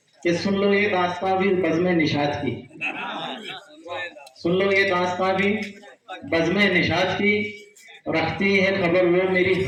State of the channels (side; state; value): both; identical; correlation 1.00